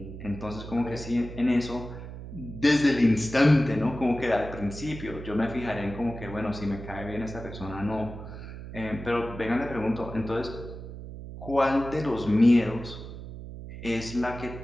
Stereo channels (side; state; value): right; noise; hum, 11 dB below the sound